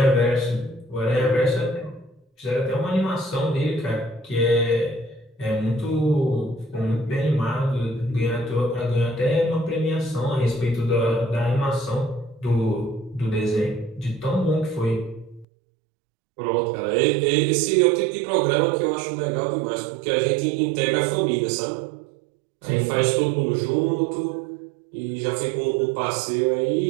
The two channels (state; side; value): drops out; left; at 15.5 s